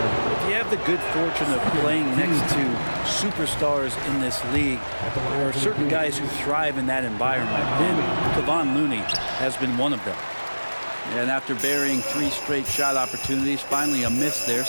you have the good fortune of playing next to superstars in this league, there are certain guys who thrive in that environment. And Kevon Looney has been one of them. And after burying 3 straight shot opportunities, finally a miss there.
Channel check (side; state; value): both; inverted; correlation -1.00